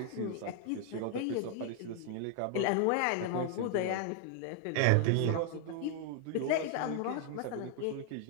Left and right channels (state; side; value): different; both; correlation 0.00